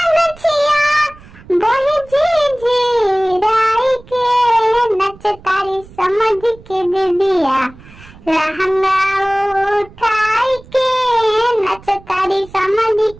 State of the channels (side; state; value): right; noise; rumble, 22 dB below the sound